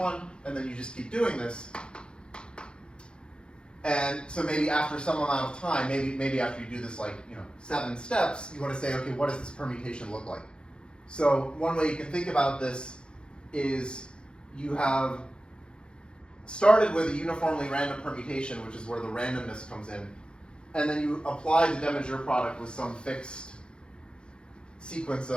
and then you just keep doing this. And so maybe after some amount of time, maybe after you do this 7 steps, you want to say, okay, what does this permutation look like? So one way you can think about this is you have started with a uniformly random permutation, which is where the randomness comes in, and then you apply the de Maugiure product with some fixed sequence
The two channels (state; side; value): late; right; 0.052 ms